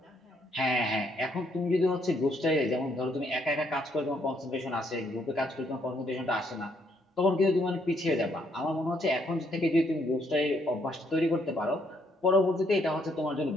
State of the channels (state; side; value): normal; both; correlation 0.71